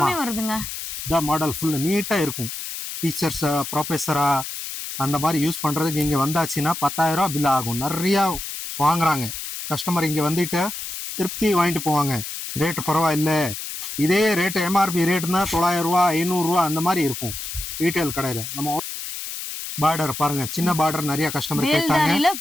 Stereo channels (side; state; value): left; noise; hiss, 7 dB below the sound